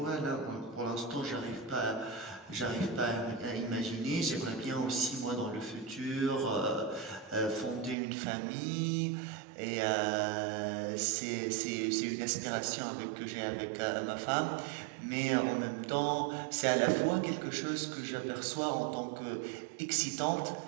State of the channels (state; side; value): drops out; left; at 8.0 s